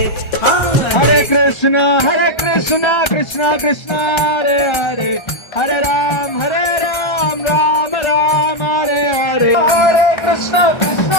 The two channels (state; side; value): late; right; 1.3 ms